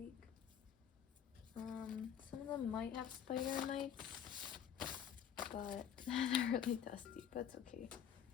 Some of them might have spider mites, but they're really dusty, but it's okay.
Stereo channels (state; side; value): quieter; right; 8.9 dB